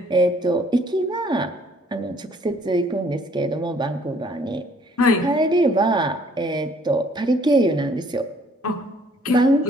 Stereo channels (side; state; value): both; normal; correlation 0.61